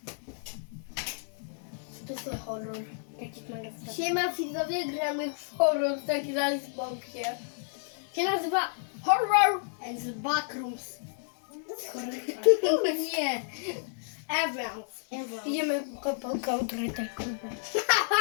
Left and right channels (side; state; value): right; silent; digital silence